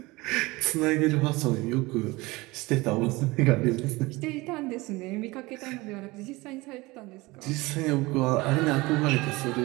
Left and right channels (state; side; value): quieter; left; 22.0 dB